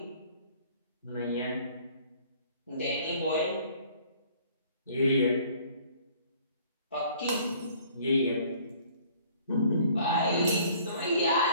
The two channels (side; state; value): both; inverted; correlation -0.56